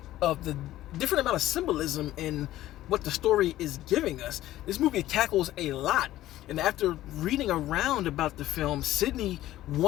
of the different amount of symbolism in what the story is giving us. This movie tackles a lot, and after reading around about the film, Sydney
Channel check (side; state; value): right; quieter; 14.6 dB